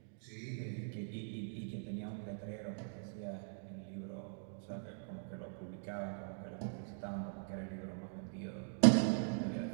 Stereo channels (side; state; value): left; silent; digital silence